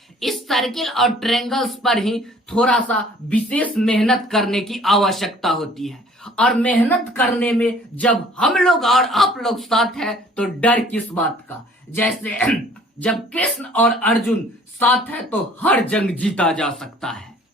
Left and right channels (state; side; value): normal; both; correlation 0.54